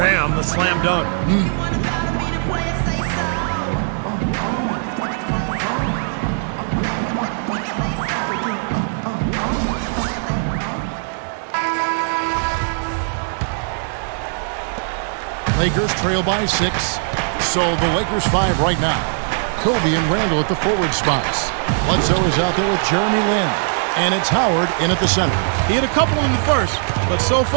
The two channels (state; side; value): silent; left; digital silence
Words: the slam dunk. Lakers trail by 6. So the Lakers 5 right now. Kobe and Randall at the forward spots. Bledsoe is out there with Jeremy Lin. And it's Howard in at the center. He hit a couple in the first, but so